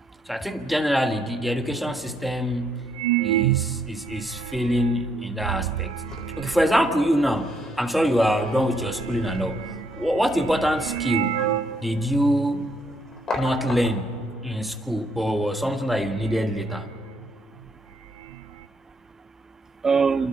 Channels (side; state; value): both; normal; correlation 0.72